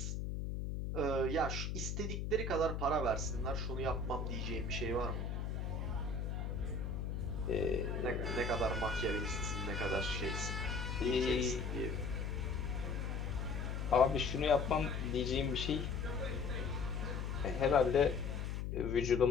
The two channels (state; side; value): noise; left; hum, 2 dB below the sound